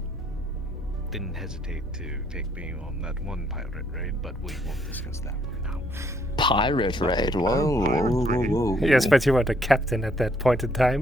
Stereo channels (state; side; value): normal; both; correlation 0.68